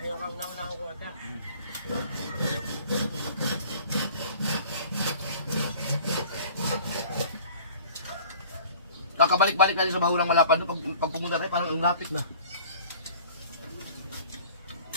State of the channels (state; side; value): inverted; both; correlation -0.47